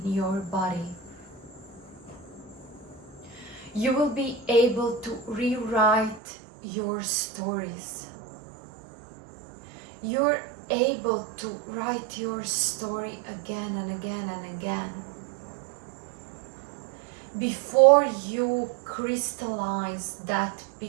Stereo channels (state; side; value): drops out; left; at 6.2 s